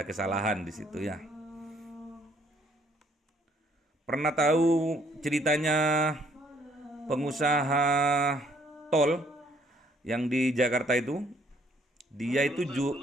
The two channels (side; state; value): both; normal; correlation 0.64